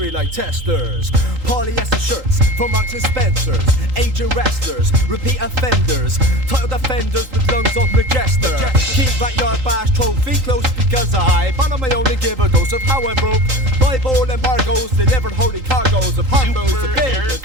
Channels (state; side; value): late; left; 3.8 ms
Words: like testers. Polyester shirts from Marks and Spencer's. Aging wrestlers, repeat offenders. Title defenders with lungs of Majester. Keep that yard bash trophy close because I bottom I only give a ghost of how I broke. Bible embargoes delivered holy cargoes of Harpo's a